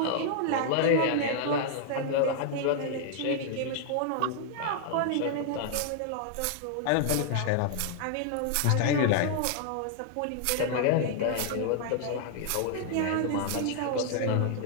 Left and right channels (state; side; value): different; both; correlation 0.00